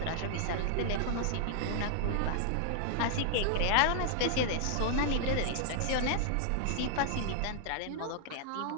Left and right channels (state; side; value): different; both; correlation -0.01